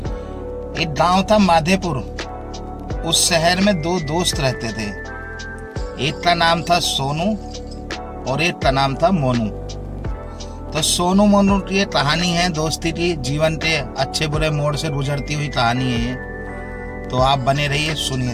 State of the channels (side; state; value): both; identical; correlation 1.00